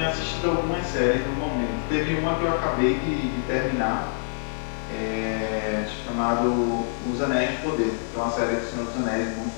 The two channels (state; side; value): silent; right; digital silence